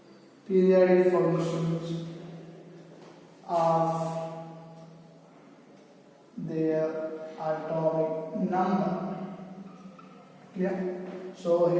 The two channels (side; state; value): both; identical; correlation 1.00